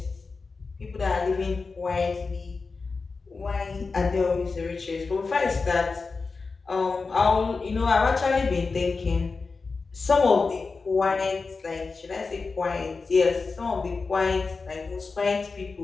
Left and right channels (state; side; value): quieter; right; 4.3 dB